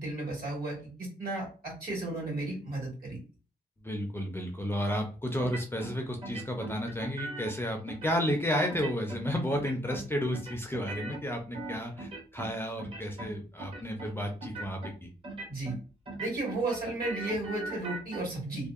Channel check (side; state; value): both; normal; correlation 0.67